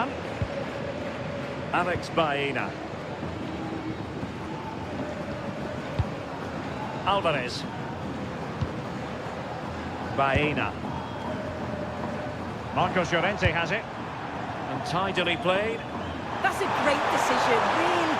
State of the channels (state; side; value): identical; both; correlation 1.00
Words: Alex Baena. Alvarez. Baena. Marcos Llorente has it. And tidily played. That's a great decision, really